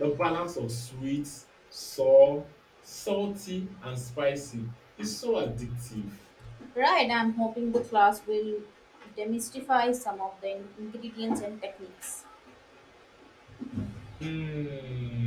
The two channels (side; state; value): both; identical; correlation 1.00